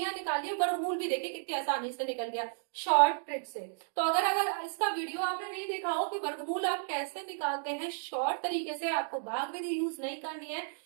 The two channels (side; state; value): left; silent; digital silence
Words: निकालिए, वर्गमूल भी देखिए कितनी आसानी से निकल गया शॉर्ट ट्रिक से। तो अगर इसका वीडियो आपने नहीं देखा हो कि वर्गमूल आप कैसे निकालते हैं शॉर्ट तरीके से, आपको भाग विधि यूज नहीं करनी है,